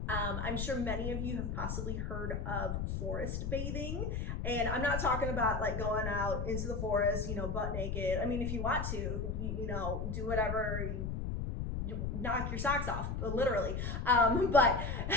I'm sure many of you have possibly heard of forest bathing, and I'm not talking about like going out into the forest, butt naked. I mean, if you want to, do whatever, you knock your socks off, literally. But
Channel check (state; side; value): noise; left; rumble, 2 dB below the sound